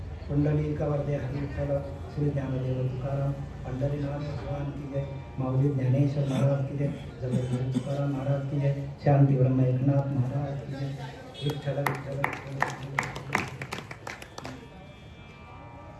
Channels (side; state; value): both; identical; correlation 1.00